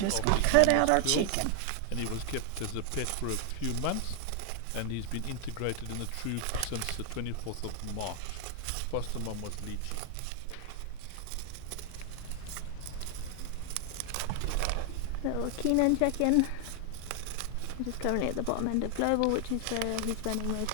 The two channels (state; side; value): different; both; correlation 0.00